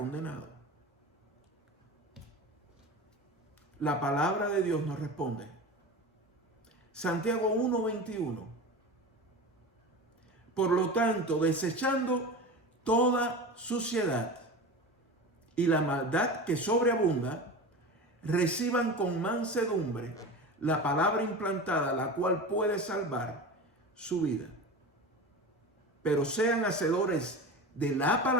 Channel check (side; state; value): both; normal; correlation 0.30